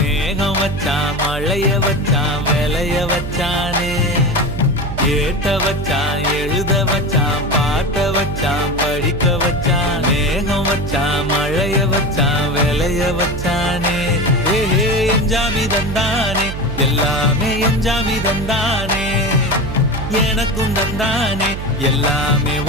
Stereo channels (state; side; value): noise; right; hum, 6 dB below the sound